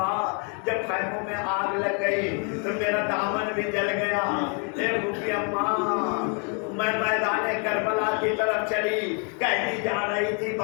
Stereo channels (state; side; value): quieter; right; 38.5 dB